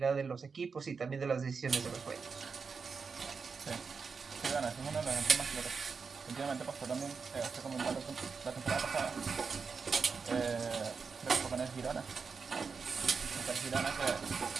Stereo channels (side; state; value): left; quieter; 5.3 dB